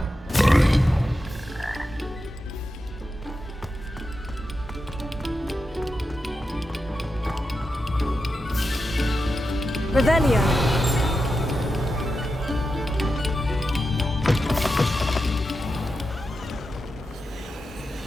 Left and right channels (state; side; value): normal; both; correlation 0.89